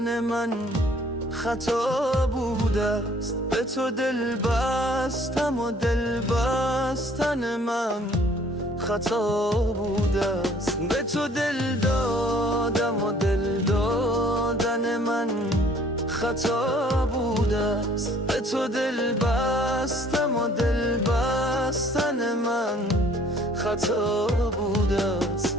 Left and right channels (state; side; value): normal; both; correlation 0.57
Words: من خطا بوده است. به تو دل بستم و دل بستن من خطا بوده است. به تو دل دادم و دل دادن من خطا بوده است. به تو دل بستم و دل بستن من خطا بوده است.